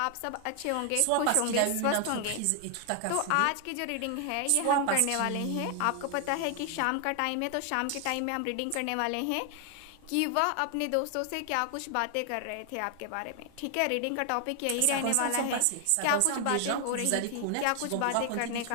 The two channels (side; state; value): both; different; correlation 0.00